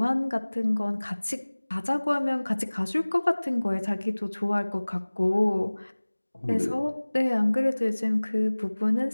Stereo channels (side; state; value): both; inverted; correlation -1.00